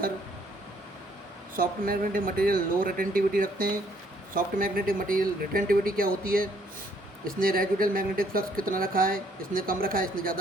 soft magnetic material low retentivity रखते हैं। सॉफ्ट मैग्नेटिक मटेरियल रिटेंटिविटी क्या होती है? इसने रेजिडुअल मैग्नेटिक फ्लक्स कितना रखा है, इसने कम रखा है, इसने ज़्यादा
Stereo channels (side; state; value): both; normal; correlation 0.66